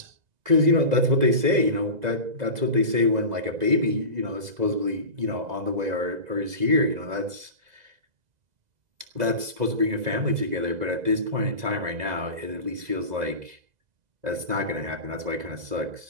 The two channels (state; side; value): late; left; 2.0 ms